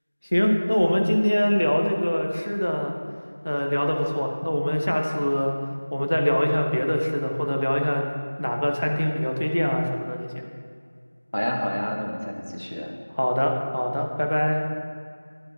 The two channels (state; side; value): inverted; both; correlation -1.00